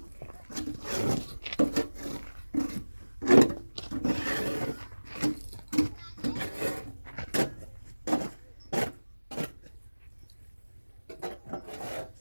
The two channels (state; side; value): inverted; both; correlation -1.00